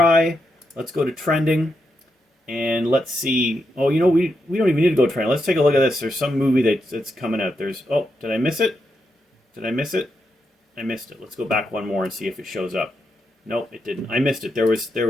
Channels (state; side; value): normal; both; correlation 0.83